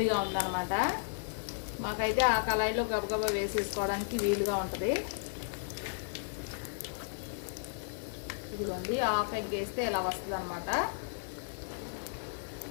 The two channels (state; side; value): silent; right; 55 dB below the other